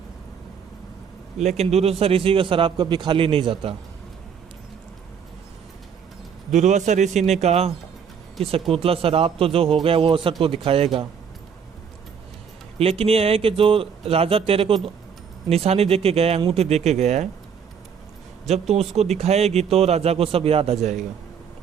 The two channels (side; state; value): left; quieter; 7.1 dB